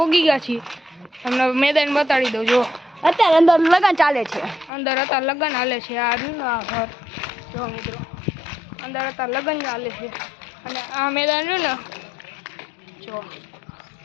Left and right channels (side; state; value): right; drops out; at 4.7 s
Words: ગયા છીએ. તમને મેદાન બતાડી દઉં. જો અત્યારે અંદર લગન ચાલે છે. અંદર અત્યારે લગન હાલે છે. આ રહ્યું ને આ ઘર. જો મિત્રો અંદર અત્યારે લગન ચાલે છે અને આ મેદાન રહ્યું ને, જો